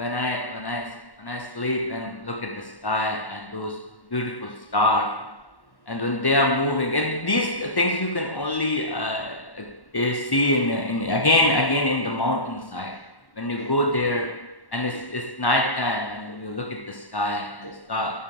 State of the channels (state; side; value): late; right; 1.1 ms